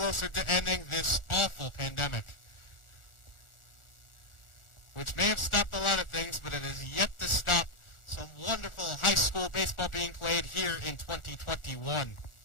to ending this awful pandemic, which may have stopped a lot of things, but it has yet to stop some wonderful high school baseball being played here in 2021.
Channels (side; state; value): right; late; 1.4 ms